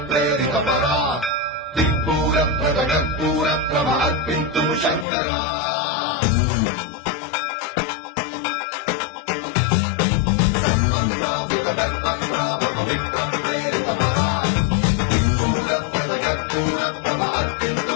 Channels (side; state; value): right; drops out; at 5.1 s